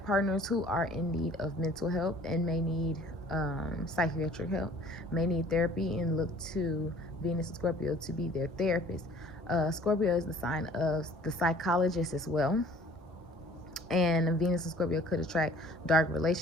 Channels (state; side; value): normal; both; correlation 0.52